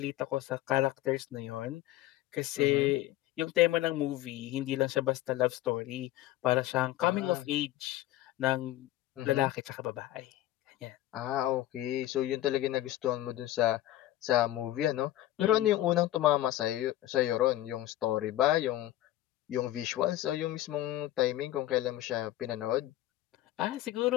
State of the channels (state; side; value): quieter; right; 14.7 dB